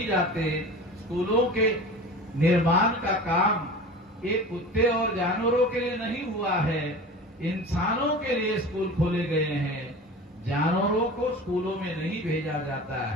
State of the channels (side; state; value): both; normal; correlation 0.36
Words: जाते। स्कूलों के निर्माण का काम ये कुत्ते और जानवरों के लिए नहीं हुआ है, इंसानों के लिए स्कूल खोले गए हैं। जानवरों को स्कूलों में नहीं भेजा जाता